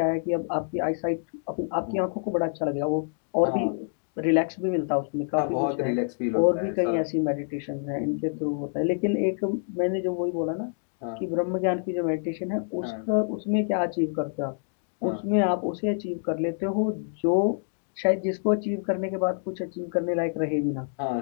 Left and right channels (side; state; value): right; silent; digital silence